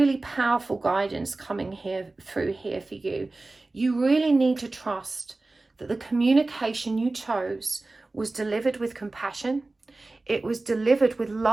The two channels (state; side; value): quieter; left; 3.2 dB